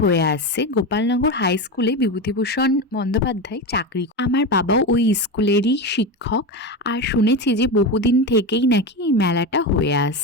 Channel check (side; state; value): both; normal; correlation 0.18